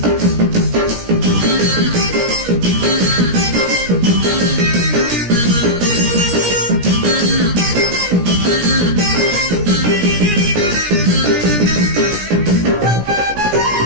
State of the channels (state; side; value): late; left; 17 ms